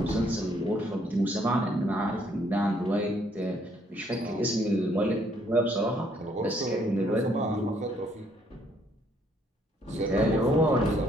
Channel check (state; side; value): normal; both; correlation 0.67